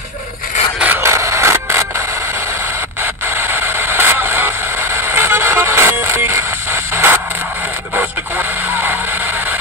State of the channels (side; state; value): both; normal; correlation 0.15